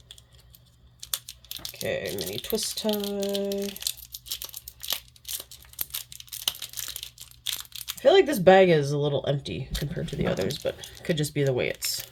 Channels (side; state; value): both; identical; correlation 1.00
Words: Okay, mini twist tie. I feel like this bag is a little empty compared to the others, but it could just be the way it's